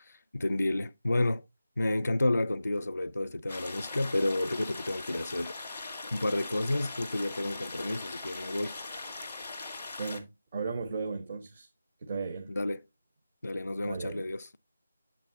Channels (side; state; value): both; inverted; correlation -0.94